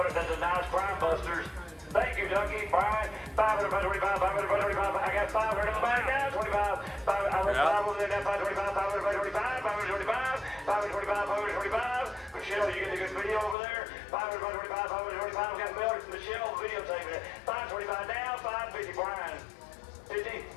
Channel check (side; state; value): right; drops out; at 13.6 s